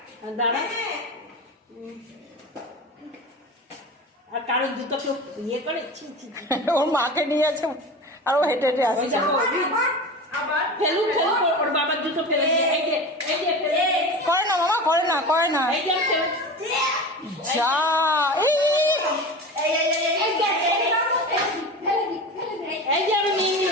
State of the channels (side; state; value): both; normal; correlation 0.30